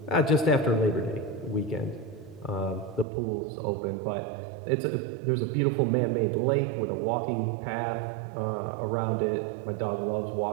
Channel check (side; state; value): left; drops out; at 3.1 s